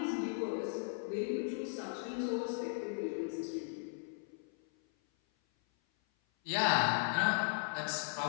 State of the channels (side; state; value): right; silent; 53 dB below the other